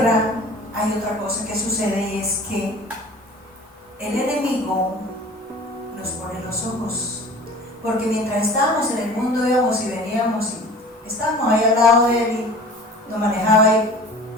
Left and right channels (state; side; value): normal; both; correlation 0.43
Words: hay otra cosa que sucede, y es que el enemigo nos pone los ojos, porque mientras estábamos en el mundo íbamos y veníamos y estábamos ahí al lado de él y nos manejaba ahí